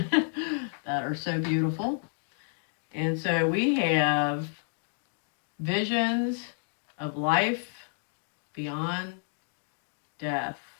that are so beautiful. And so we have visions of life beyond death.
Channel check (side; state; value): right; silent; 56 dB below the other